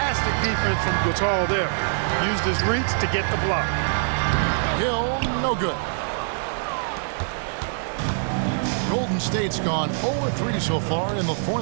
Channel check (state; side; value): silent; left; digital silence